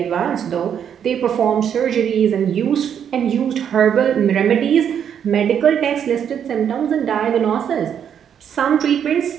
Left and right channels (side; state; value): left; quieter; 8.5 dB